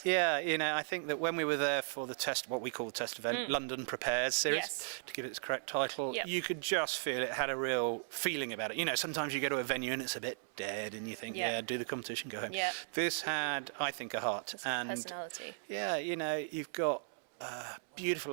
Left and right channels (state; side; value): silent; left; 53 dB below the other